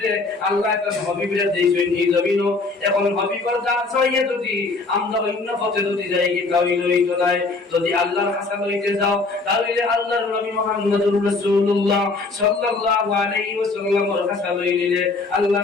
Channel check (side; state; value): right; quieter; 3.8 dB